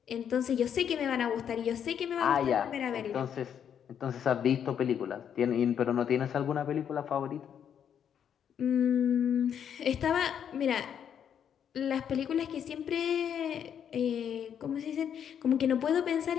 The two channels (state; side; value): quieter; right; 8.6 dB